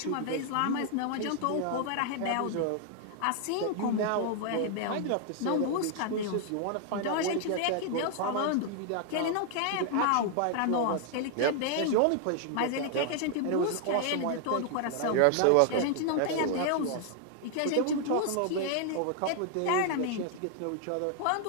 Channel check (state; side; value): different; both; correlation 0.00